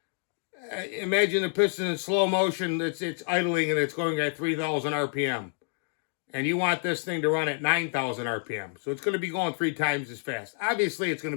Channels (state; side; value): silent; right; 59 dB below the other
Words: imagine the piston in slow motion, it's idling and it's going at 3,000 RPM. And you want this thing to run at 9,000 RPM. So it's going to be going 3 times as fast. Obviously, it's going